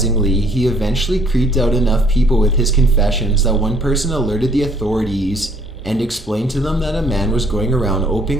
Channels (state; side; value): normal; both; correlation 0.62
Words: he eventually creeped out enough people with his confessions that one person alerted the authorities, and explained to them that a man was going around